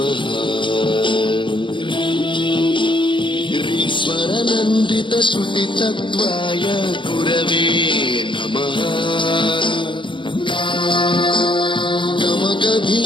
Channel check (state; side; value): late; right; 0.24 ms